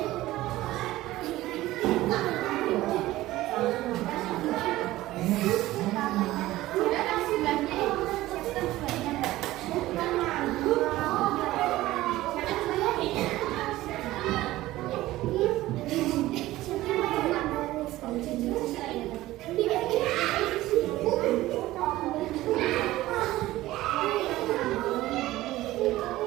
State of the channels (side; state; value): left; quieter; 16.6 dB